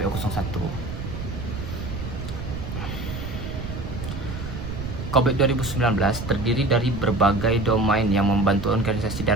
01. COVID 2019 terdiri dari berbagai domain yang membantu organisasi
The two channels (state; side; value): noise; right; rumble, 7 dB below the sound